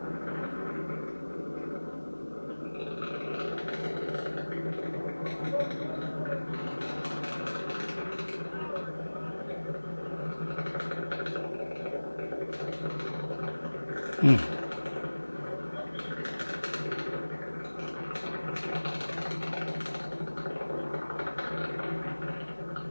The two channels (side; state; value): both; inverted; correlation -1.00